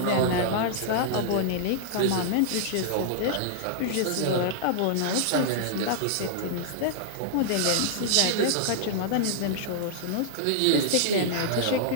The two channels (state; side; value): different; both; correlation -0.01